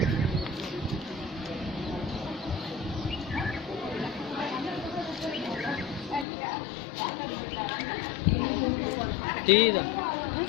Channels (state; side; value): drops out; right; at 6.2 s